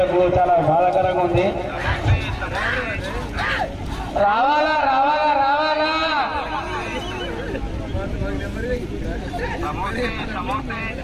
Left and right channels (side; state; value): both; identical; correlation 1.00